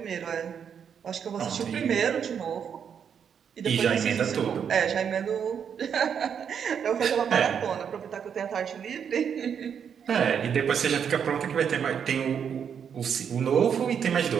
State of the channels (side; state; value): left; quieter; 7.6 dB